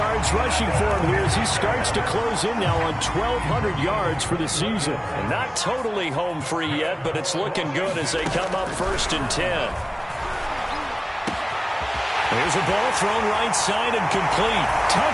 rushing for him here as he starts to close in now on 1,200 yards for the season. And not totally home free yet, but it's looking good as they come up 1st and 10. There's a ball thrown right side and complete.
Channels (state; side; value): identical; both; correlation 1.00